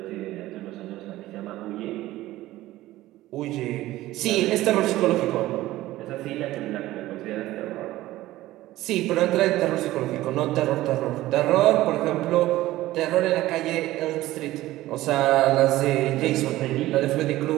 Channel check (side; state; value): left; quieter; 16.3 dB